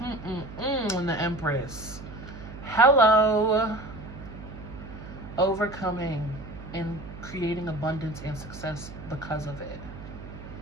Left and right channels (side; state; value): right; noise; hum, 13 dB below the sound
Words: And the Empress. Hello. Overcoming and creating abundance and success because of it.